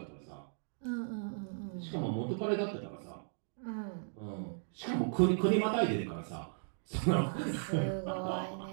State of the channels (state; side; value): silent; left; digital silence